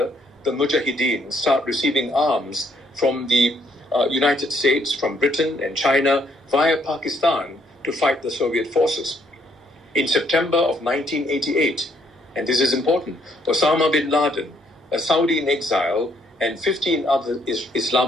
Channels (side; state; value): both; normal; correlation 0.69